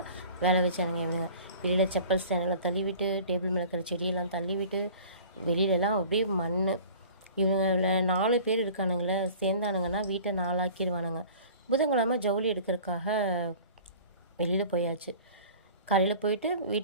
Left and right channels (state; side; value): inverted; both; correlation -0.45